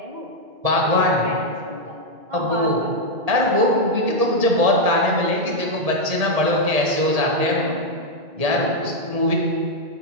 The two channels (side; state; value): left; late; 1.8 ms